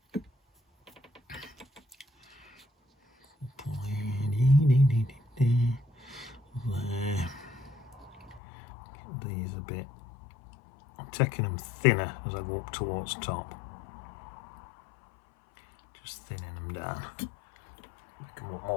There. Get these a bit. I'm taking them thinner as I go up towards top. Just thinning them down. Make them look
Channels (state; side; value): drops out; right; at 8.4 s